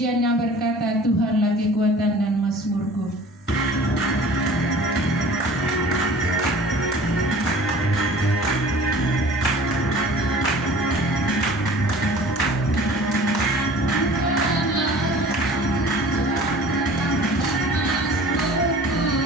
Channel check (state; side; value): normal; both; correlation 0.45